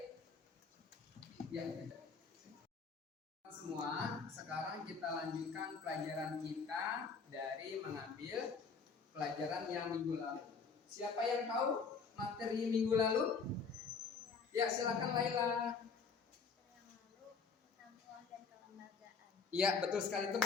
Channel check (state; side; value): quieter; right; 5.2 dB